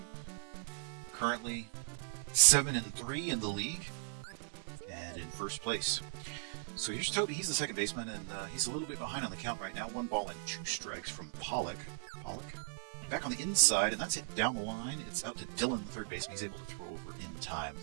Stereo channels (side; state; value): left; silent; 53 dB below the other